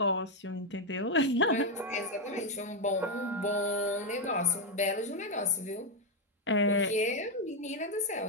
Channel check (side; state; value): both; normal; correlation 0.04